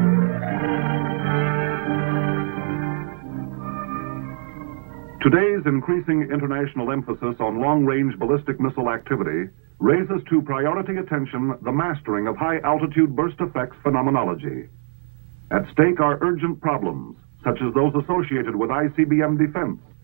Today's increasing international emphasis on long-range ballistic missile activity raises to priority attention the mastering of high-altitude burst effects phenomenology. At stake are urgent problems, such as those associated with ICBM defense,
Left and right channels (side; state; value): left; silent; 64 dB below the other